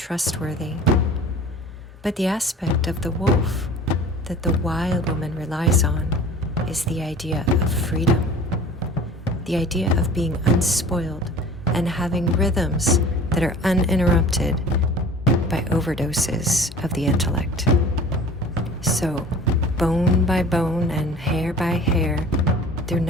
But the aspect of the wolf that the wild woman relies on is the idea of freedom, the idea of being unspoiled and having rhythms that are uninterrupted by overdoses of the intellect. So, bone by bone and hair by hair, through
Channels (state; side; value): normal; both; correlation 0.44